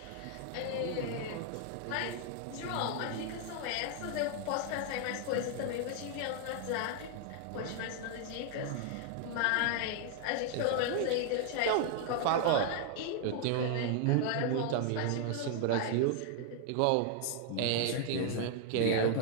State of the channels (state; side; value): different; both; correlation 0.00